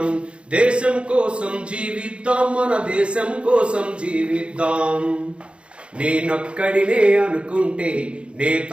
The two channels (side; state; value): left; late; 0.058 ms